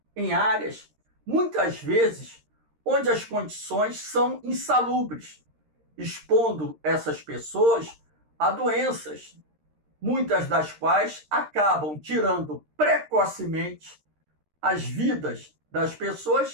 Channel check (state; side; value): late; left; 13 ms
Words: em áreas, muitas vezes, onde as condições são insalubres, expondo essas pessoas a doenças, muitas das quais acabam tirando precocemente as vidas das